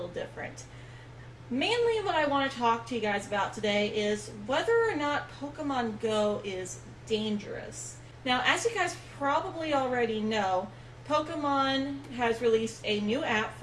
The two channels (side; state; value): both; identical; correlation 1.00